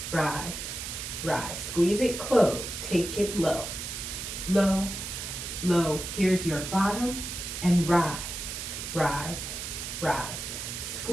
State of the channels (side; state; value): right; noise; hiss, 6 dB below the sound